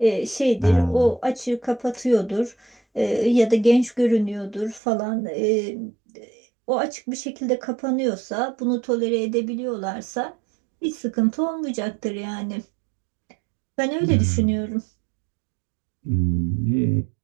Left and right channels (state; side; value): drops out; left; at 4.8 s